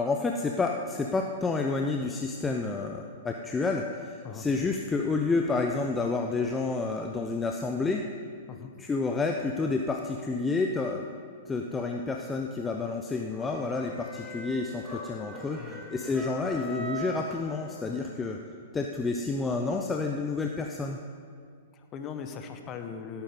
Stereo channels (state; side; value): quieter; right; 3.3 dB